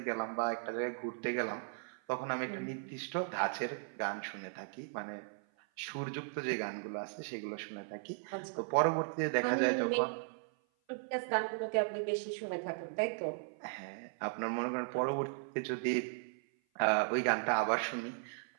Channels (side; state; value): left; silent; 53 dB below the other